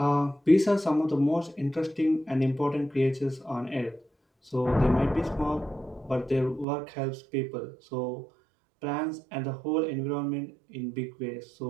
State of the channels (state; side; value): drops out; left; at 6.7 s